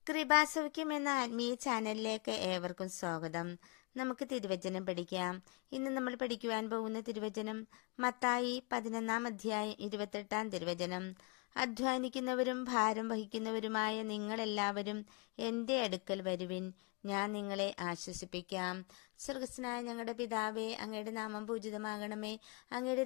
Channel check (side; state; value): right; quieter; 32.0 dB